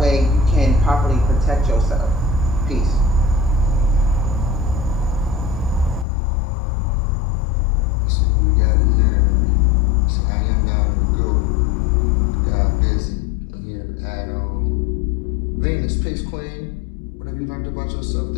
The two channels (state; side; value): drops out; right; at 6.1 s